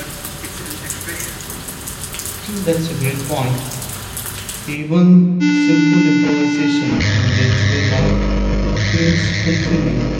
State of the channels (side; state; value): both; identical; correlation 1.00